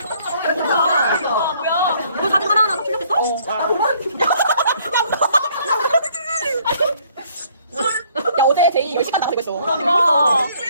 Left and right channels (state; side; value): inverted; both; correlation -0.62